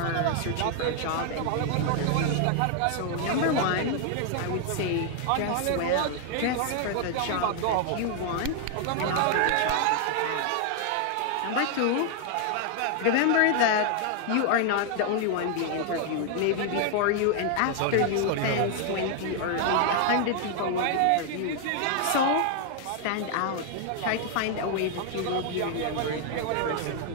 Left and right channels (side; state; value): both; different; correlation 0.00